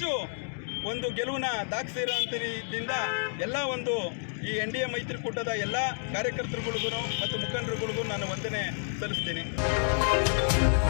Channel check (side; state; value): right; silent; digital silence